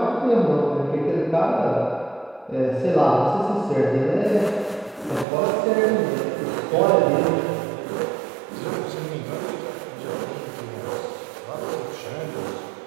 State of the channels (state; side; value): drops out; left; at 5.2 s